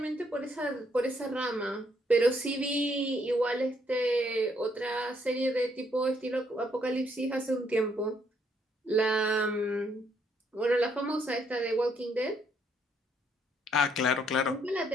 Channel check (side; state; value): both; normal; correlation 0.71